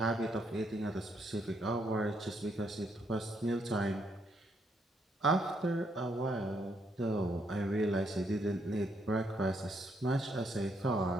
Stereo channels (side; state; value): both; normal; correlation 0.74